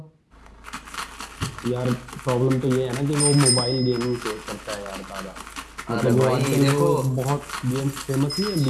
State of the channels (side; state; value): both; identical; correlation 1.00